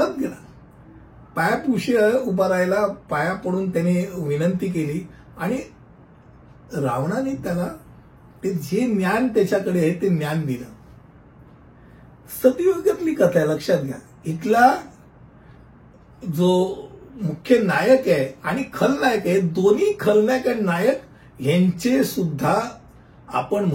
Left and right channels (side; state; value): both; identical; correlation 1.00